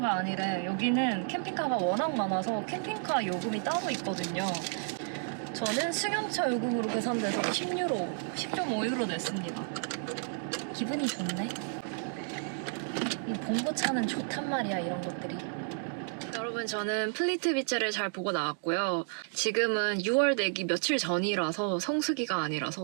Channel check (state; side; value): silent; left; 57 dB below the other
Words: 아니래. 여기는 캠핑카가 워낙 많아서 캠핑카 요금이 따로 있거든요. 저는 승용차 요금으로 계산돼서 10유로, 10.5유로 냈습니다. 기분이 좋네. 이 봉고차는 좋단 말이야, 이런 것들이. 여러분, 저는 플리트 비치를 잘 보고 나왔고요. 지금은 6월 되기 며칠 전이라서 성수기가